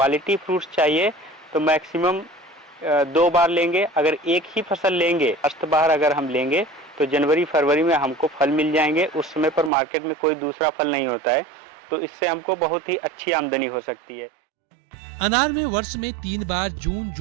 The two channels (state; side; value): drops out; left; at 9.7 s